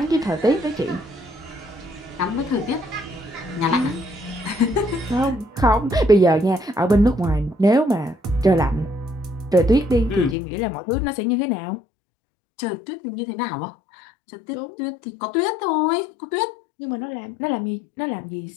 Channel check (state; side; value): drops out; right; at 10.4 s